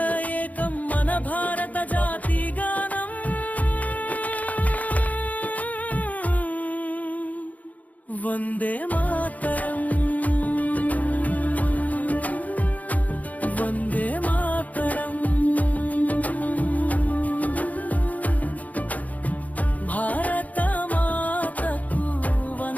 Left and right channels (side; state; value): right; late; 0.075 ms